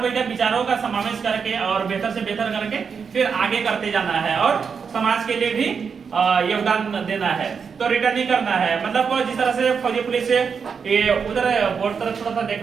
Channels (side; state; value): left; quieter; 6.1 dB